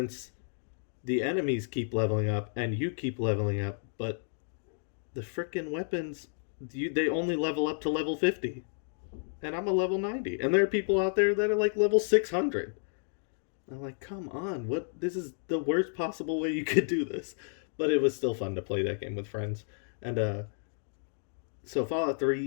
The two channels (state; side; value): silent; right; digital silence